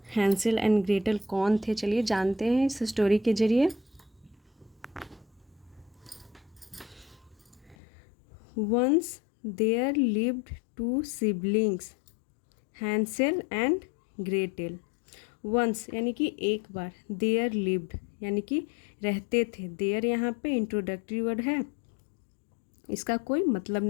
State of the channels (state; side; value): drops out; right; at 7.8 s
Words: हैंसेल एंड ग्रेटेल कौन थे, चलिए जानते हैं इस स्टोरी के जरिए। Once there lived two siblings, Hansel and Gretel. Once यानी कि एक बार, देयर लिव्ड यानी कि रहते थे। देयर यहाँ पे इंट्रोडक्टरी वर्ड है, इसका कोई मतलब